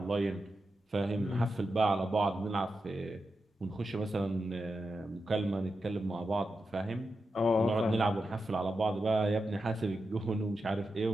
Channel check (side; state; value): both; normal; correlation 0.89